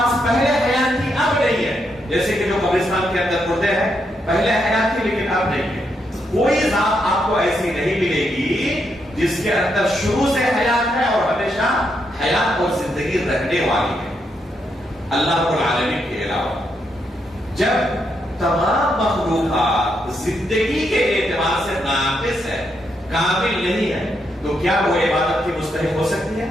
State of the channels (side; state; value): both; normal; correlation 0.80